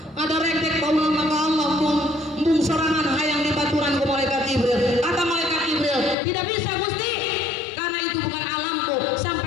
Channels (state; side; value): drops out; right; at 6.2 s